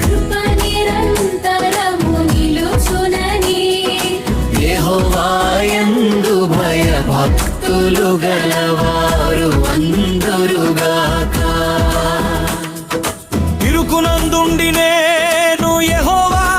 యెహోవా యందు భయభక్తులు గలవారు అందురుగాక. ఇరుకునందుండి నేను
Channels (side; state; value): both; identical; correlation 1.00